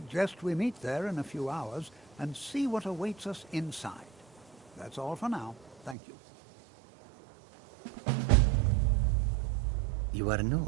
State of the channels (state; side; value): drops out; left; at 6.0 s